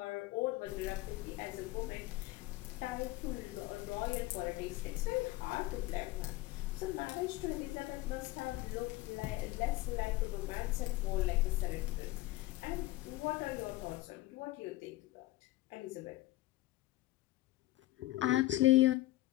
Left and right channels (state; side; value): quieter; right; 17.9 dB